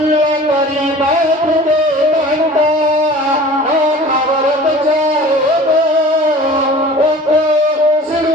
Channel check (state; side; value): normal; both; correlation 0.43